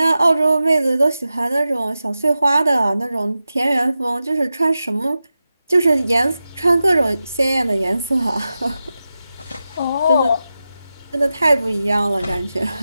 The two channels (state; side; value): inverted; both; correlation -0.93